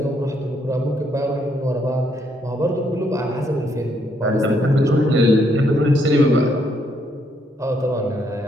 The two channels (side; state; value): both; normal; correlation 0.73